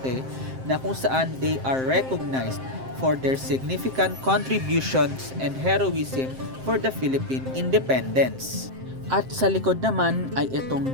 na kung saan they are recognized for their significant contributions and heroism for the Philippine independence. At sa likod naman ay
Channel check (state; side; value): late; left; 7.6 ms